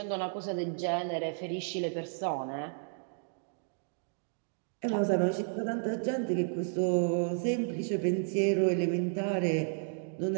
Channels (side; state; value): left; silent; digital silence